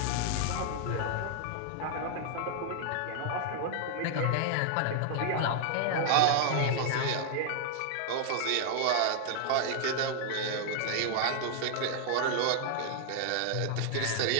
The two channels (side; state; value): both; different; correlation 0.00